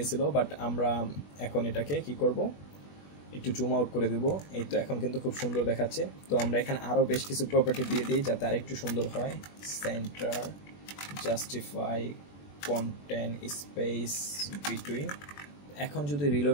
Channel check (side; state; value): right; late; 21 ms